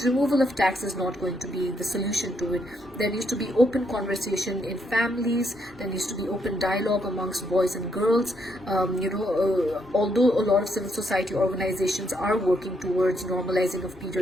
removal of tax is not going to be the solution to it. There needs to be open conversation in families. There needs to be open dialogue amongst boys and girls. Although a lot of civil society organizations are working towards normalizing of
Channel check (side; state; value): both; normal; correlation 0.75